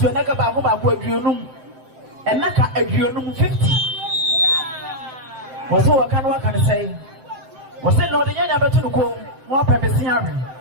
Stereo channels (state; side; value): late; left; 7.7 ms